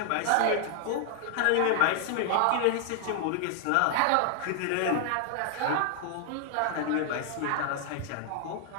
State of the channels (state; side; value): different; both; correlation 0.00